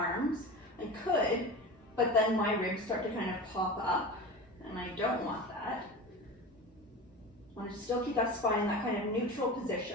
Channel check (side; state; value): both; normal; correlation 0.30